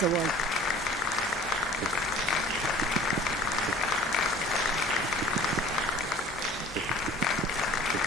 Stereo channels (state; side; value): normal; both; correlation 0.47